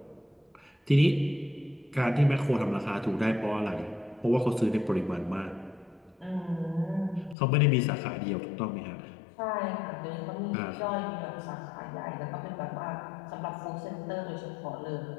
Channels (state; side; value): drops out; right; at 7.4 s